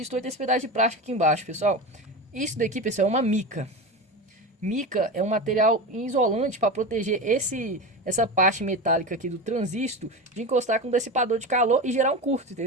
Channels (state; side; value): normal; both; correlation 0.24